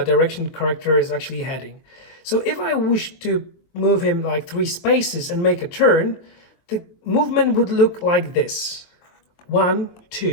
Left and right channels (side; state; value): right; late; 23 ms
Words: the character is actually heading. So if I wish to move him like 3 spaces and make a turn, the movement would look like this: 1,